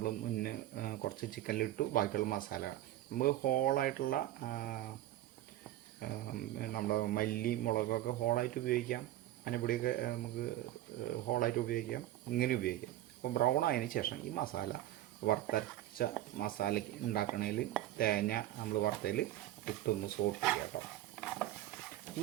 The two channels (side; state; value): left; quieter; 14.2 dB